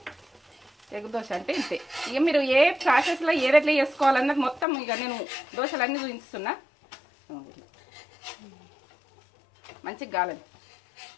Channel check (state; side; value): drops out; right; at 4.7 s